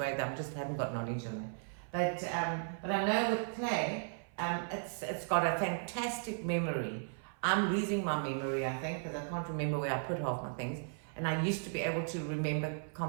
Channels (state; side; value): silent; left; 54 dB below the other